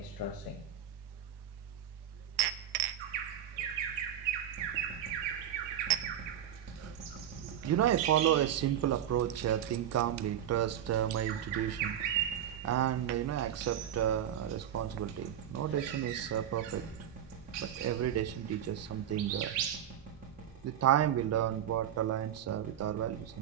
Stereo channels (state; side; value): quieter; left; 10.4 dB